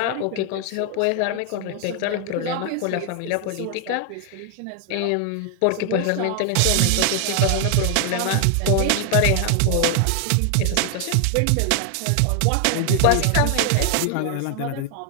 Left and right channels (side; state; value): both; different; correlation 0.00